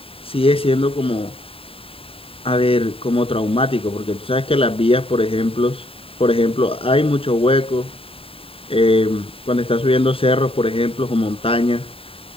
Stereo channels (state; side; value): late; right; 0.27 ms